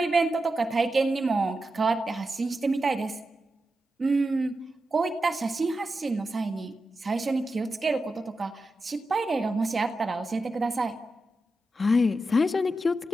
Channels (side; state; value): both; normal; correlation 0.89